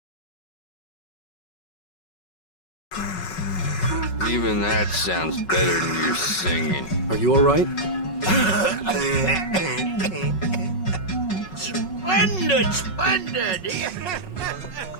Even that sounds better than your singing. Are you all right? Splendid, splendid!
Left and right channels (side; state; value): right; late; 5.4 ms